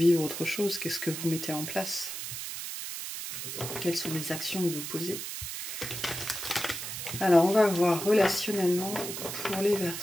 autre chose? Qu'est-ce que vous mettez en place? Quelles sont les actions que vous posez? Alors, on va voir relationnellement pour les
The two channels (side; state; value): right; noise; hiss, 6 dB below the sound